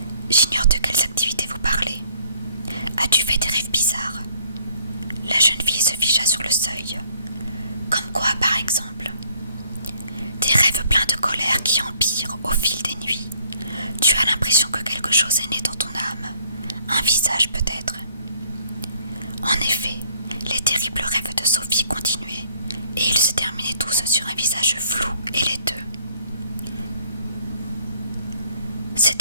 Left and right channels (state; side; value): inverted; both; correlation -0.63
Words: J'ignore de quelles activités vous parlez. As-tu fait des rêves bizarres? La jeune fille se figea sur le seuil. Quand Comme quoi, par exemple? Des rêves pleins de colère qui empirent au fil des nuits. Tu as l'impression que quelque chose est né dans ton âme. Un visage peut-être. En effet, les terribles rêves de Sophie continuaient, et ils se terminaient tous sur un visage flou et laiteux. Ces